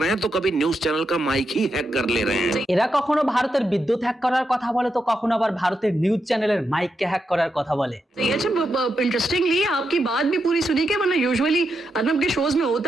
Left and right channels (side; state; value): both; normal; correlation 0.85